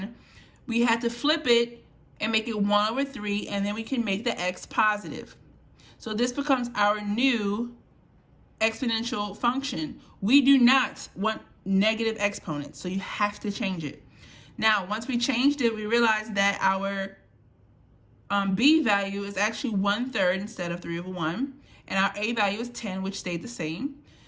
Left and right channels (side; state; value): both; identical; correlation 1.00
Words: we had to flip it and make it 1/3, and then we can make the x positive. So this becomes our new exponential function. We do not want negative exponents, so you have to change it. Now, once we changed it, we realized that our b value is actually 1/3 instead of 3/1, and our a value is 10, which stayed the same.